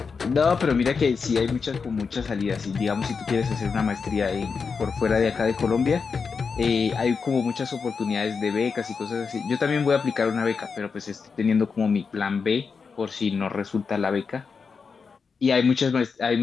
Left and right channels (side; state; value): right; quieter; 5.3 dB